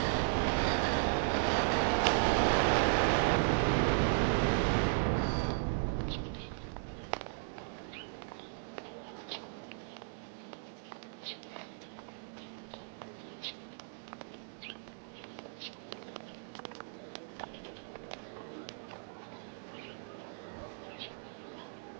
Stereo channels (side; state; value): left; silent; digital silence